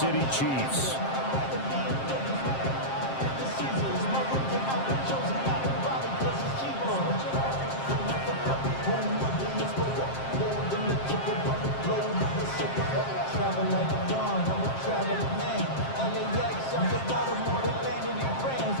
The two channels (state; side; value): late; right; 7.5 ms